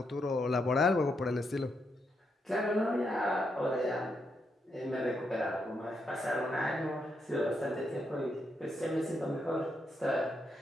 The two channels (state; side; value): normal; both; correlation 0.80